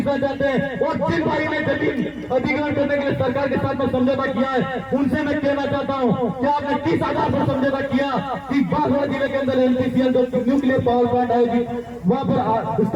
चाहते हैं और जिन भाई ने जमीन अधिग्रहण करने के लिए सरकार के साथ में समझौता किया है उनसे मैं कहना चाहता हूँ कि आपने 30,000 पर समझौता किया कि बागड़ जिले के अंदर एनपीसीएल जो न्यूक्लियर पावर प्लांट आएगी वहाँ पर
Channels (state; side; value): identical; both; correlation 1.00